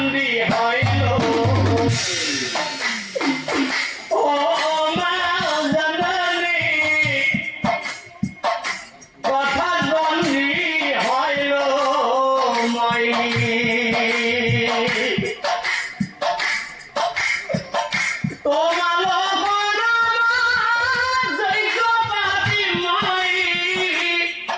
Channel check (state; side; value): identical; both; correlation 1.00